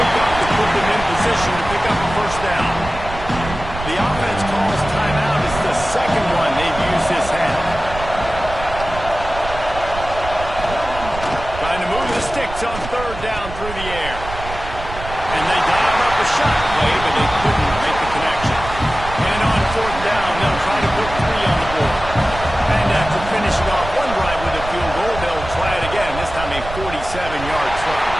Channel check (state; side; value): noise; right; rumble, 10 dB below the sound